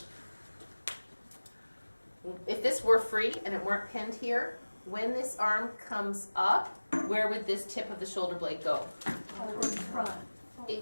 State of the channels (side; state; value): both; inverted; correlation -1.00